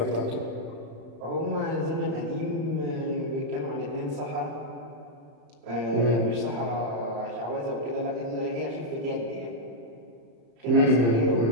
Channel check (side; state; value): left; late; 35 ms